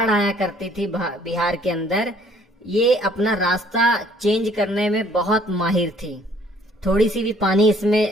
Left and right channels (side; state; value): both; normal; correlation 0.60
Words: आया करती थी बिहार के अंदर। ये अपना रास्ता चेंज करने में बहुत माहिर थी। थोड़ी सी भी पानी